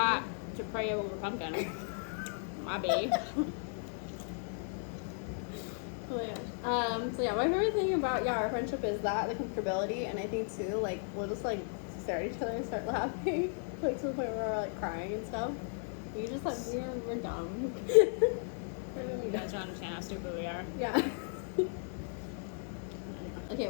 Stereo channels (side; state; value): right; silent; 54 dB below the other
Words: to pray over Pumpkin. My babe. Oh my gosh. So yeah, my favorite thing about our friendship is that, the comfortability, and I think too, like, we'll just like stare at each other and start laughing, like to the point where we're like crying and stuff. We just like we're dumb. You guys don't understand how stupid we are. Yeah. Okay,